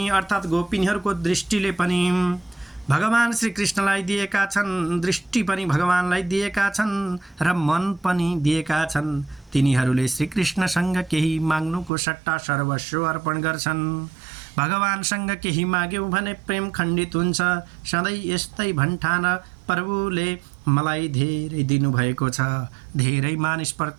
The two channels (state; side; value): drops out; left; at 11.9 s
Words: अर्थात् गोपिनीहरूको दृष्टिले पनि भगवान श्री कृष्णलाई दिएका छन्, दृष्टि पनि भगवानलाई दिएका छन् र मन पनि दिएका छन्। तिनीहरूले श्रीकृष्णसँग केही माग्नुको सट्टा सर्वस्व अर्पण गर्छन्। भगवानसँग केही माग्यौँ भने प्रेम खण्डित हुन्छ। सधैँ यस्तै भन्ठान प्रभुले मलाई धेरै दिनुभएको छ। धेरै